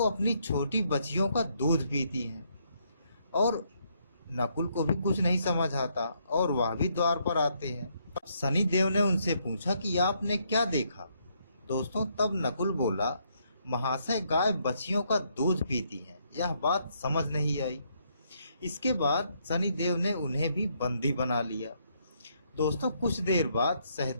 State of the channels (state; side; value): inverted; both; correlation -0.73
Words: अपनी छोटी बच्चियों का दूध पीती हैं। और नकुल को भी कुछ नहीं समझ आता और वह भी द्वार पर आते हैं। शनि देव ने उनसे पूछा कि आपने क्या देखा। दोस्तों, तब नकुल बोला, महाशय, गाय बच्चियों का दूध पीती हैं यह बात समझ नहीं आई। इसके बाद शनिदेव ने उन्हें भी बंदी बना लिया। दोस्तों कुछ देर बाद